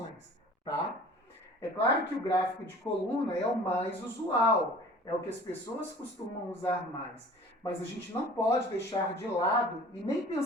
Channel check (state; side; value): normal; both; correlation 0.46